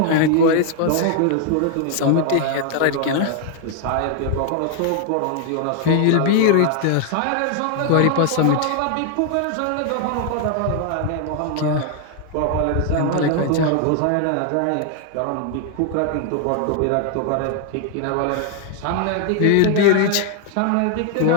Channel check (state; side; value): different; both; correlation 0.00